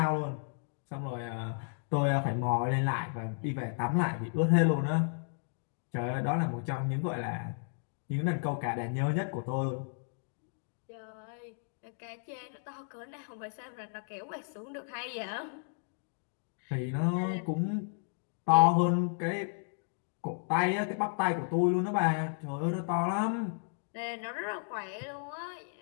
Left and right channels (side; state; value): right; silent; digital silence